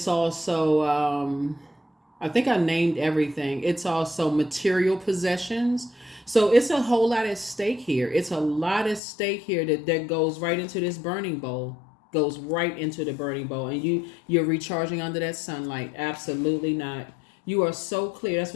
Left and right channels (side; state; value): right; drops out; at 9.0 s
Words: also I think I named everything. It's also material possessions. So it's a whole lot at stake here. It's a lot at stake here that goes right into this burning bowl. Goes right into the burning bowl, and you're recharging under that sunlight. Absolutely not. You are so clear. That's